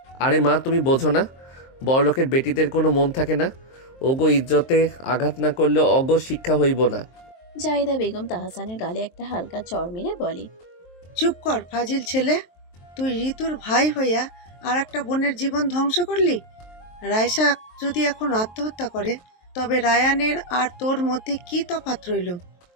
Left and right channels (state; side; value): late; right; 23 ms